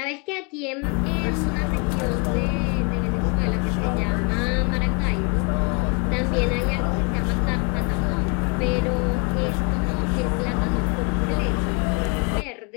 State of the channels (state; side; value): quieter; right; 33.7 dB